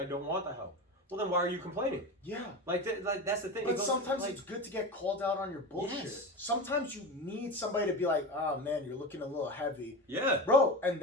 don't want the help? Well, then why are you complaining? Yeah. Like that's the thing. But sometimes it's good to get called out on your bullshit. Yes. Sometimes you need somebody to be like, oh, man, you're looking a little heavy. Yeah. Bro, and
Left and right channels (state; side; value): normal; both; correlation 0.25